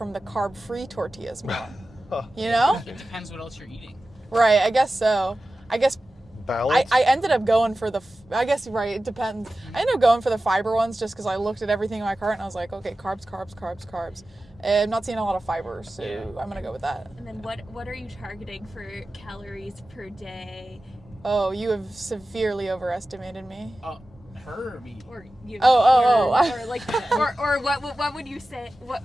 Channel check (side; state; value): both; normal; correlation 0.94